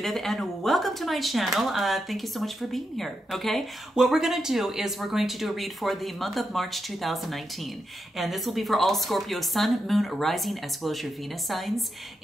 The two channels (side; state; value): both; normal; correlation 0.85